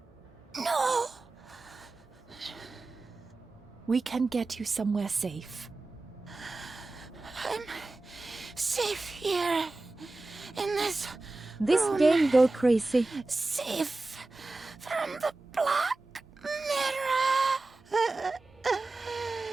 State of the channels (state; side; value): quieter; left; 3.2 dB